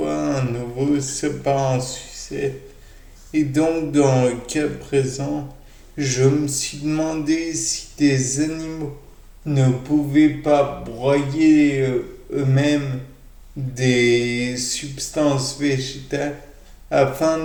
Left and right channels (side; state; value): both; identical; correlation 1.00